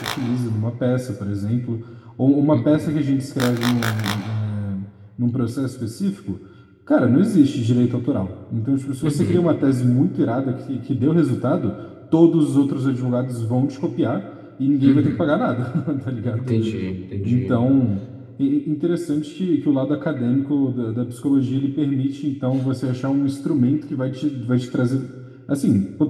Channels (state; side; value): identical; both; correlation 1.00